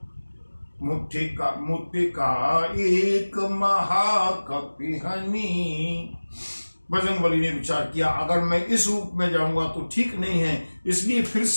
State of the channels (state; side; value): inverted; both; correlation -1.00